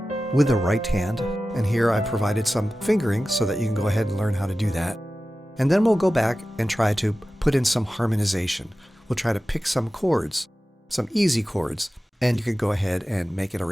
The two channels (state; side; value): normal; both; correlation 0.95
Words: with the right hand. And here I've provided some fingering so that you can go ahead and learn how to do that. And then we'll go back and try to put in some harmonization. We'll try to pick some chords, some easy chords, and you can go ahead and make an